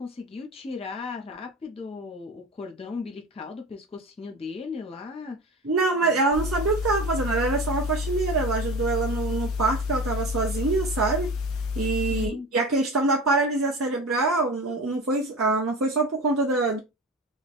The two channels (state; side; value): normal; both; correlation 0.32